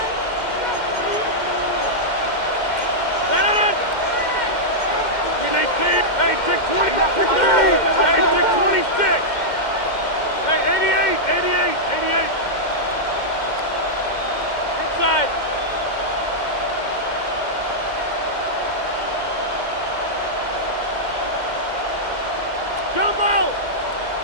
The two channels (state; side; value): late; right; 2.1 ms